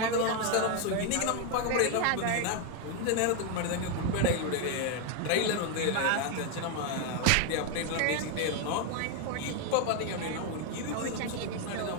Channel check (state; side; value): different; both; correlation 0.01